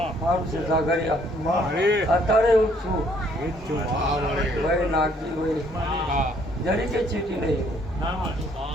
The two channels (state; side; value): normal; both; correlation 0.64